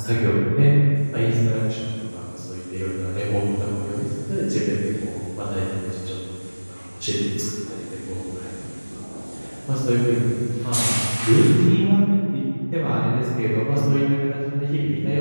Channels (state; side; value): inverted; both; correlation -1.00